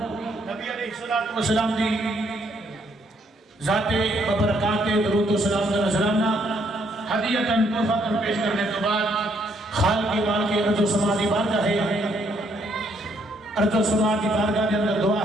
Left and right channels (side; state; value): both; normal; correlation 0.70